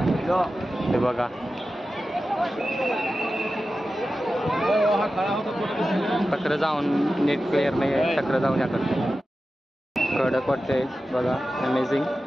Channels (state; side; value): normal; both; correlation 0.93